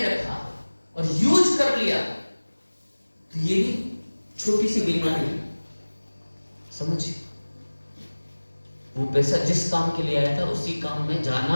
और यूज कर लिया, तो ये भी छोटी सी बीमारी है, समझिए। वो पैसा जिस काम के लिए आया था उसी काम में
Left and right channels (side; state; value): both; inverted; correlation -1.00